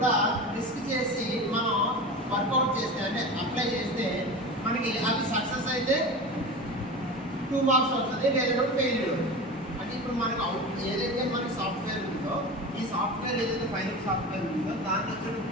రిస్క్ చేసి మనం వర్కౌట్ చేస్తే అంటే అప్లై చేస్తే మనకి అవి సక్సెస్ అయితే 2 మార్క్స్ వస్తుంది, లేదంటే ఫెయిల్యూర్. అంటే ఇప్పుడు మనకు ఏదైతే మనకి సాఫ్ట్వేర్ ఉందో ఈ సాఫ్ట్వేర్ ఏదైతే ఫైనల్ సాఫ్ట్వేర్ ఉందో దాన్ని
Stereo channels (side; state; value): both; normal; correlation 0.29